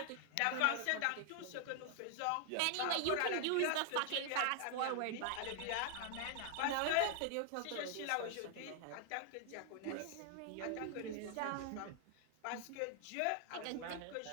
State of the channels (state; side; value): different; both; correlation 0.00